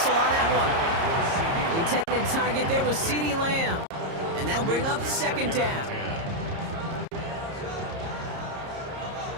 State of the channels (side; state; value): left; late; 30 ms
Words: on that one. The intended target there was CeeDee Lamb. And that'll bring up second down.